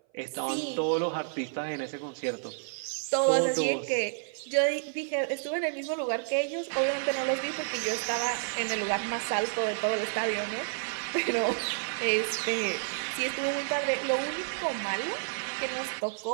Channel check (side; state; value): left; silent; 57 dB below the other